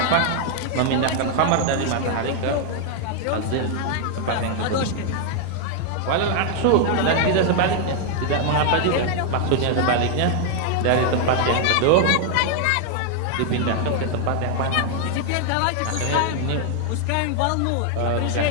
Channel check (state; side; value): different; both; correlation 0.00